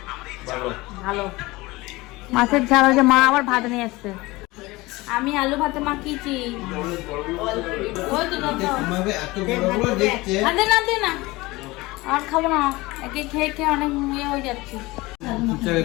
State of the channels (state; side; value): quieter; right; 21.3 dB